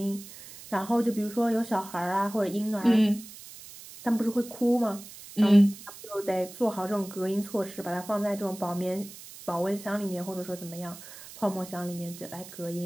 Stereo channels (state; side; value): noise; right; hiss, 16 dB below the sound